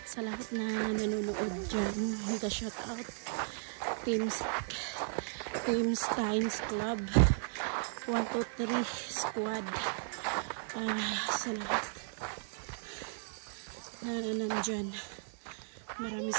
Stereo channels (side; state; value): left; silent; 54 dB below the other